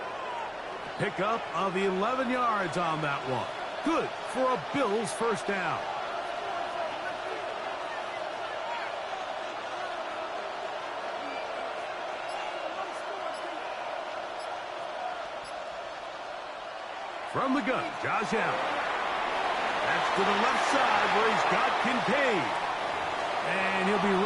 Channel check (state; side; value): identical; both; correlation 1.00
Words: Pickup of 11 yards on that one. Good for a Bills first down. From the gun, Josh Allen. That's to the left side where he's got Kincaid. And he'll be